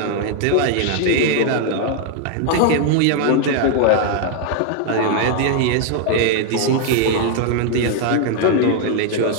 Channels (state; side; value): different; both; correlation 0.00